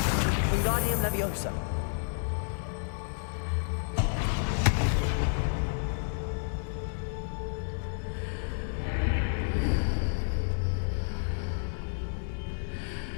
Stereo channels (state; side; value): silent; right; digital silence